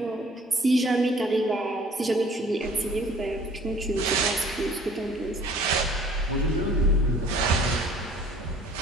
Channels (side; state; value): both; normal; correlation 0.53